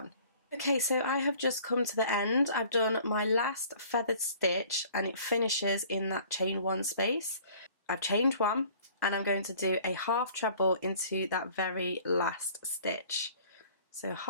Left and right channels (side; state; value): both; inverted; correlation -0.52